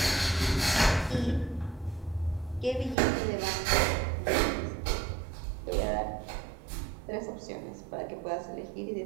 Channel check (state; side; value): drops out; left; at 3.0 s